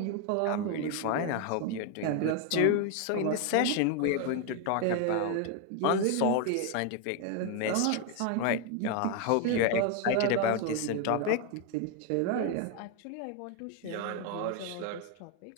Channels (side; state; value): both; different; correlation 0.01